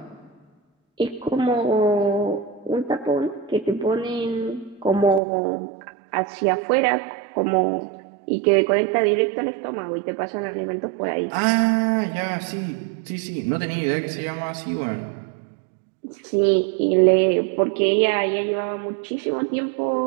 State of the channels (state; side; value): drops out; left; at 5.2 s